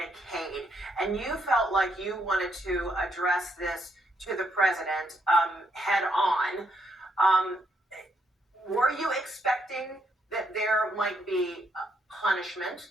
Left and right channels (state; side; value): normal; both; correlation 0.76